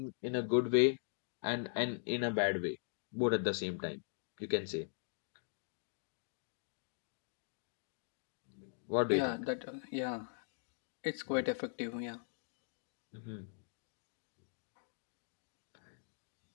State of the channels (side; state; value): right; silent; digital silence